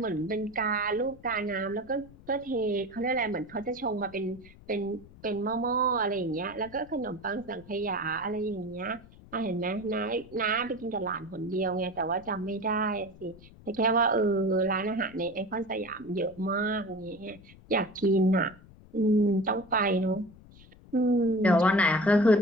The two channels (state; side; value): noise; left; rumble, 22 dB below the sound